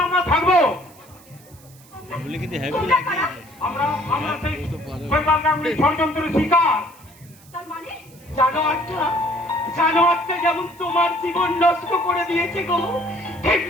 আমরা থাকবো। তোমরা কারা? আমরা সেই শৈবাল গাঙ্গুলির ষড়যন্ত্রের শিকার। তার মানে জানোয়ারটা যেমন তোমার জীবন নষ্ট করে দিয়েছে গো,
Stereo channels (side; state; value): right; noise; hiss, 25 dB below the sound